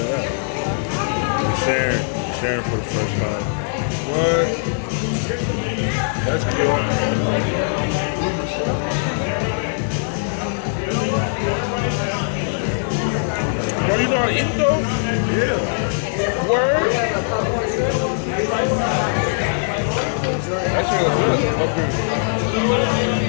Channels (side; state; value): right; silent; digital silence